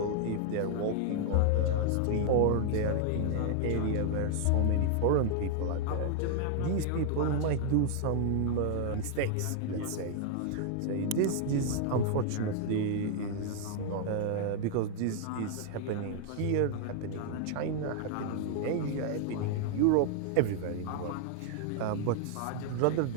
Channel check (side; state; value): both; different; correlation 0.00